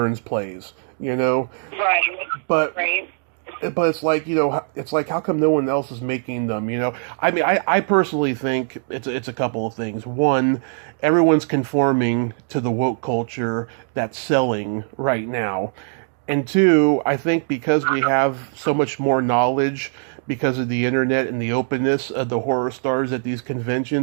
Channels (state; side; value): silent; left; digital silence